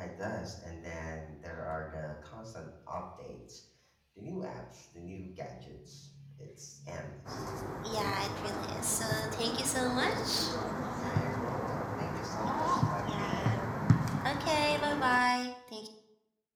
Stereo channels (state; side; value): identical; both; correlation 1.00